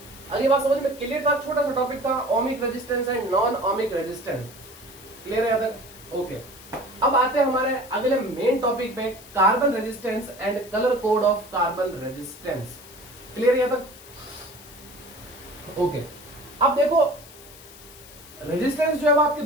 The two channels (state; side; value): noise; left; hiss, 20 dB below the sound